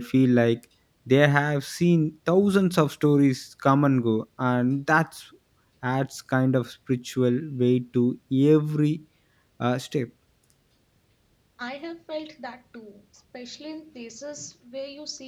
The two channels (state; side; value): identical; both; correlation 1.00